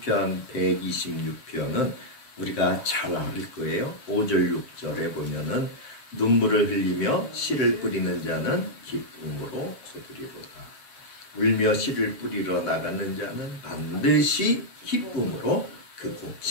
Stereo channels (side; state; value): right; late; 7.6 ms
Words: 126편은 우리가 잘 알 거예요. 5절 6절에 보면은 눈물을 흘리며 씨를 뿌리는 자는 기쁨으로 거두리로다. 울며 씨를 뿌리러 나가는 자는 반드시 기쁨으로 그